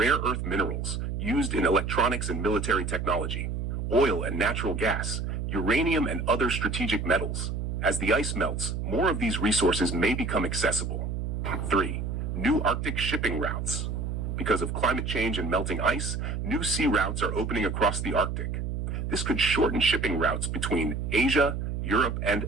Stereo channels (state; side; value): noise; right; hum, 3 dB below the sound